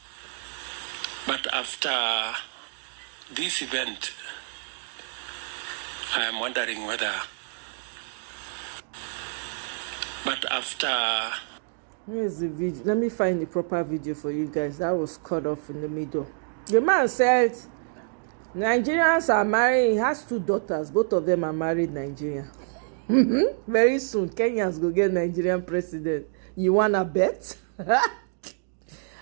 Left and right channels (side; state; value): left; silent; digital silence